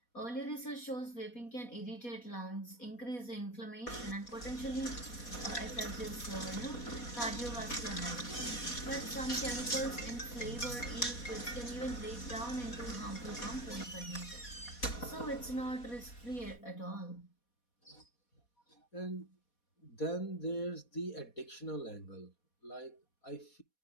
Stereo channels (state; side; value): late; right; 4.2 ms